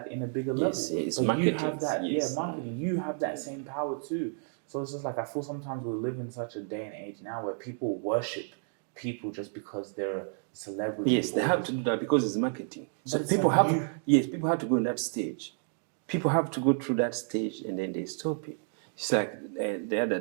in a bigger level. Yes, but marketing, you have that, yes. Marketing. You have that same power too. So it's just like, I feel sometimes we live in such a day and age now where people worship people just because they're a celebrity. Yes, they have to do that because it's marketing. So But people like people have to go in that stage. People have to go through that stage and then they stop it. It's like the other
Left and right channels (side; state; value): left; silent; 57 dB below the other